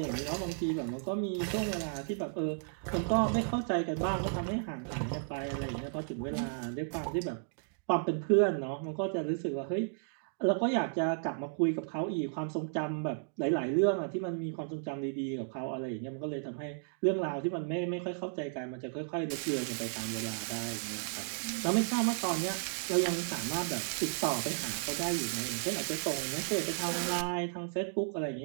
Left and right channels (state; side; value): silent; left; digital silence